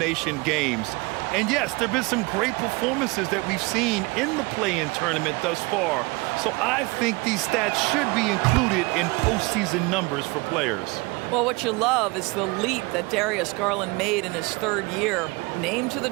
games. And, yes, there have been some great performances that we've seen in the play-in tournament thus far. So I think these stats should be included in postseason numbers for players. Well, what you love is the leap that Darius Garland made in his 3rd year. Named to the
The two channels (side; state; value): left; quieter; 25.4 dB